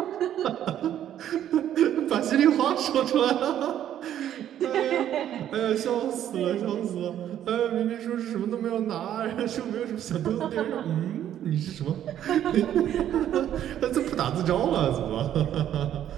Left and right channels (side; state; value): left; quieter; 10.9 dB